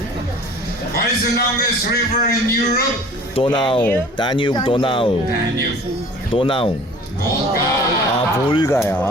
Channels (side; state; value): both; normal; correlation 0.47